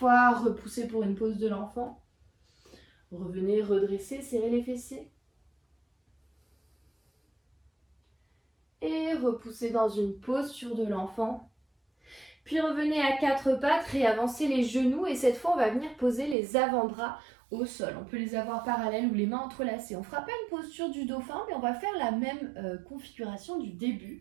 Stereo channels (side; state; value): left; drops out; at 16.4 s